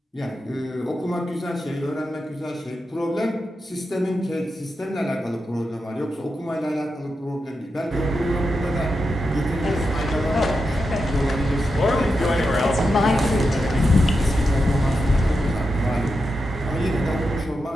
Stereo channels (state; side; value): normal; both; correlation 0.88